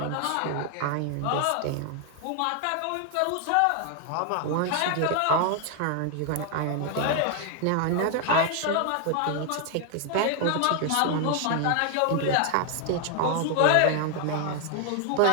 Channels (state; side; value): different; both; correlation 0.00